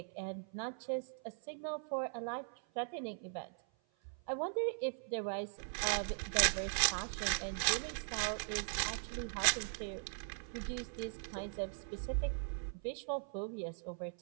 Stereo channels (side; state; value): left; silent; 51 dB below the other